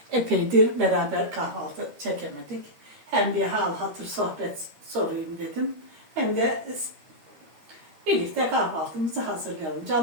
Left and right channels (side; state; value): left; late; 13 ms